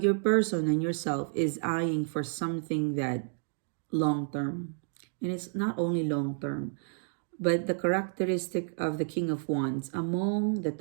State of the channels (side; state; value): left; silent; digital silence